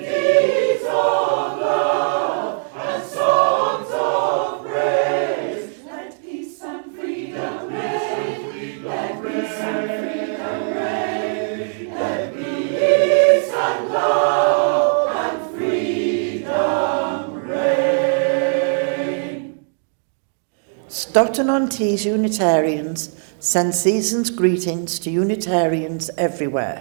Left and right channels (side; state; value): left; silent; digital silence